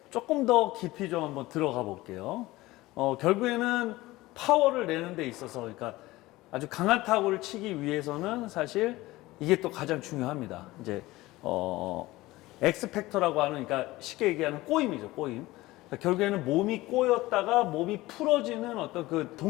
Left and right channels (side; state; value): right; quieter; 18.8 dB